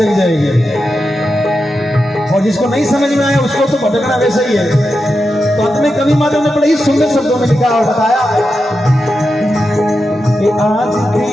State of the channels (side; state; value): both; normal; correlation 0.89